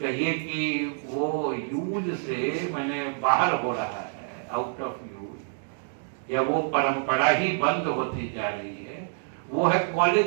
कि वो यूज से मैंने बाहर हो रहा है, आउट ऑफ यूज, या वो परंपरा ही बंद होती जा रही है, वो है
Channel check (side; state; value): left; silent; digital silence